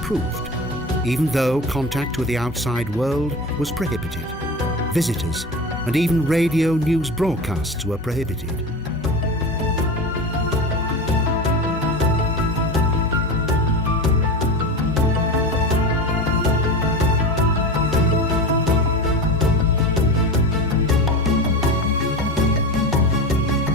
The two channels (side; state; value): both; normal; correlation 0.27